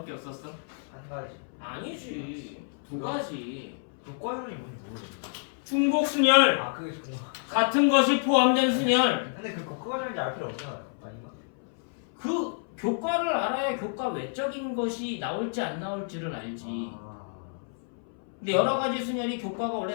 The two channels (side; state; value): right; silent; 58 dB below the other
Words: 없었어? 한 가지. 아니지. 두 가지. 교과형이 뭔지 모르겠네. 중복 순열. 아 그게 교과. 같은 것이 포함된 순열. 근데 그 교과형인지 알 필요 없잖아요. 아닌가? 그 교과를 알아야 교과 외적인 것이 나올지 안 나올지를 알지. 근데 여러 가지 순열이 교과가